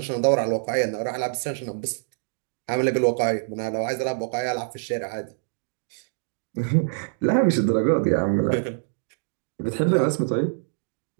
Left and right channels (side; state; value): left; silent; digital silence